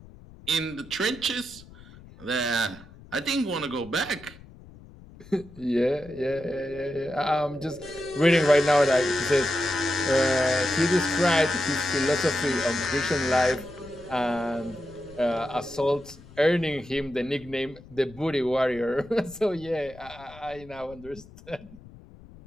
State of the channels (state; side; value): noise; left; rumble, 20 dB below the sound